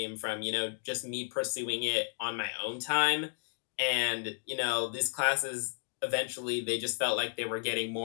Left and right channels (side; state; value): right; silent; digital silence